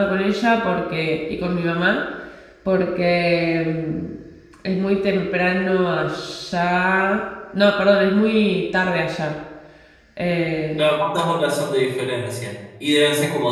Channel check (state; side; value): identical; both; correlation 1.00